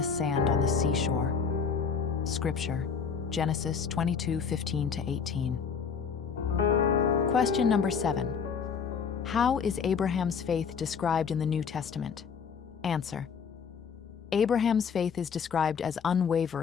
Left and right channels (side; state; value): right; quieter; 6.3 dB